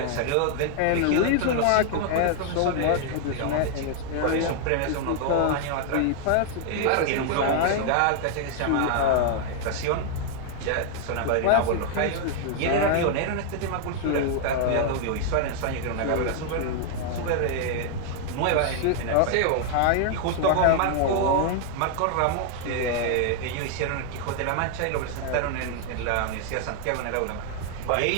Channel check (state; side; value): different; both; correlation 0.00